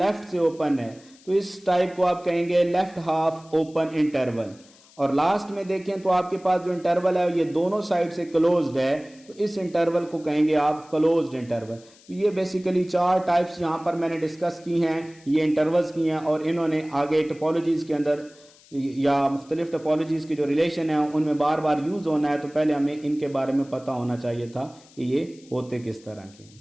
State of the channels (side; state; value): left; noise; hiss, 26 dB below the sound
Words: से ओपन है, तो इस टाइप को आप कहेंगे लेफ्ट हाफ ओपन इंटरवल। और लास्ट में देखें तो आपके पास जो इंटरवल है ये दोनों साइड से क्लोज्ड है, तो इस इंटरवल को कहेंगे आप क्लोज्ड इंटरवल। तो ये बेसिकली 4 टाइप्स यहाँ पर मैंने डिस्कस की हैं, ये इंटरवल्स की हैं, और इन्होंने आगे टोपोलॉजीज के अंदर या मुख्तलिफ टोपोलॉजीज की जो रिलेशन है उनमें बार बार यूज़ होना है, तो पहले हमें इनके बारे में पता होना चाहिए था कि ये होते किस तरह के।